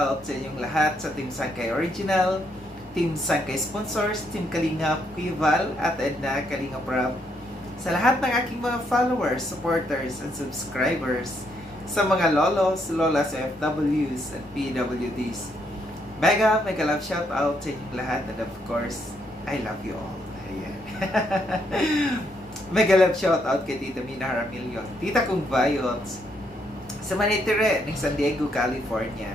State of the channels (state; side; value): normal; both; correlation 0.75